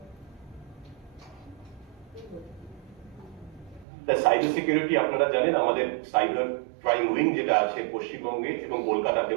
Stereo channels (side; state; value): left; drops out; at 3.9 s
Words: সাইবার সিকিউরিটি আপনারা জানেন, আমাদের সাইবার ক্রাইম উইং যেটা আছে পশ্চিমবঙ্গে এবং